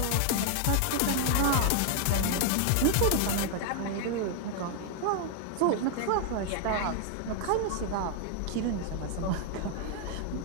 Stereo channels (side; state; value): both; different; correlation 0.00